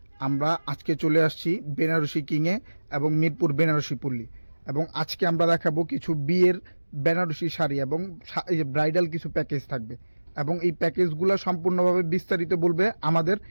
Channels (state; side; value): inverted; both; correlation -1.00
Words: আমরা আজকে চলে আসছি বেনারসি কিংয়ে এবং মিরপুর বেনারসি পল্লী। এবং আজকে আমরা দেখাবো কিছু বিয়ের বেনারসি শাড়ি এবং ব্রাইডাল কিছু প্যাকেজ থাকবে। এবং এই প্যাকেজগুলো সম্পূর্ণভাবে বিস্তারিত বলবে আমাদের